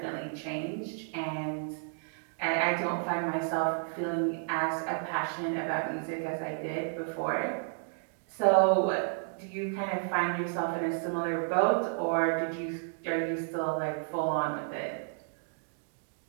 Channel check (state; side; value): silent; left; digital silence